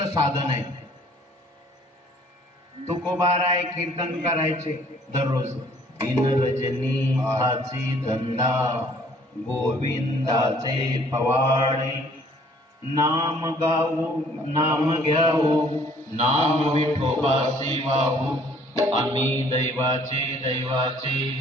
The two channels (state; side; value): normal; both; correlation 0.58